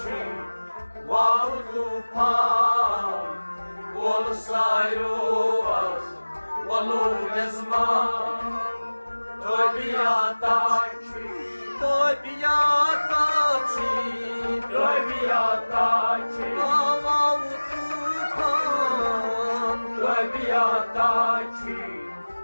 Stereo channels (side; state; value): both; inverted; correlation -1.00